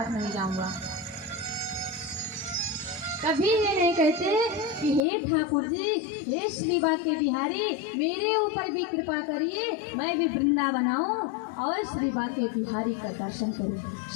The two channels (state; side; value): drops out; right; at 5.0 s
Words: नहीं जाऊंगा। कभी ये नहीं कहते कि हे ठाकुर जी, हे श्री बाके बिहारी, मेरे ऊपर भी कृपा करिए, मैं भी वृंदावन आऊं और श्री बाके बिहारी का दर्शन करूं,